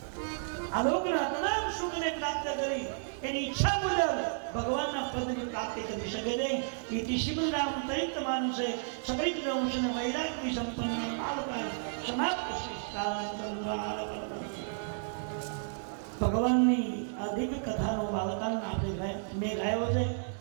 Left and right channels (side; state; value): left; silent; digital silence